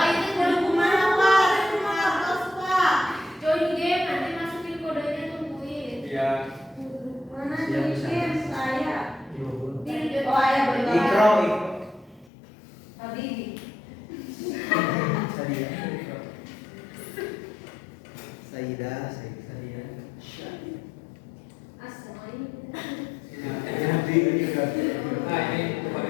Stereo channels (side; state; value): right; drops out; at 12.3 s